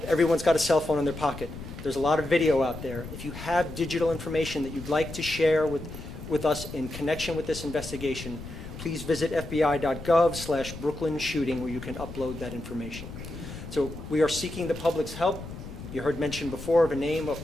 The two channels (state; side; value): noise; left; rumble, 11 dB below the sound